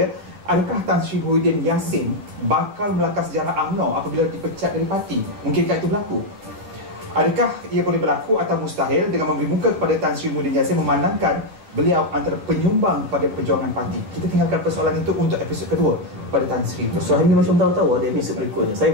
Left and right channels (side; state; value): left; late; 10 ms